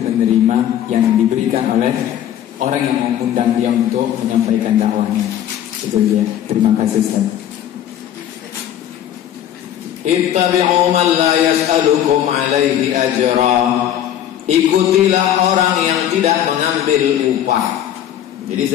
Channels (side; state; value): right; quieter; 10.9 dB